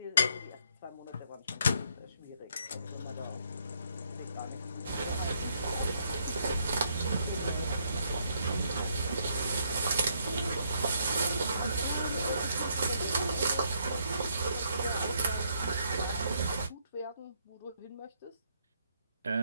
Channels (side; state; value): both; inverted; correlation -0.72